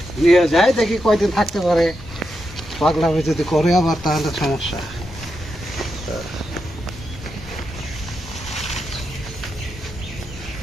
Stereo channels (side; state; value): both; normal; correlation 0.86